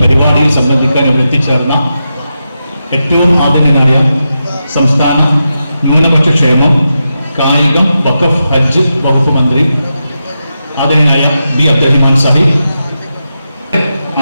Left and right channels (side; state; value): both; inverted; correlation -0.88